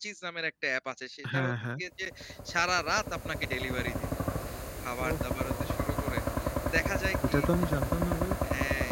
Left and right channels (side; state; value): both; identical; correlation 1.00